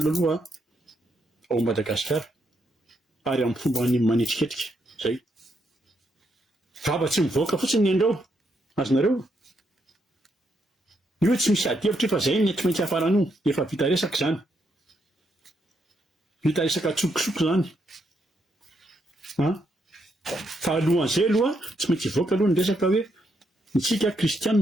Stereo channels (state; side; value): normal; both; correlation 0.78